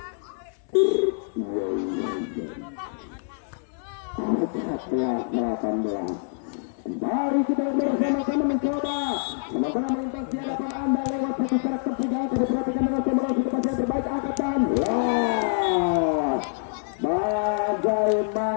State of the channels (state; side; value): silent; right; 61 dB below the other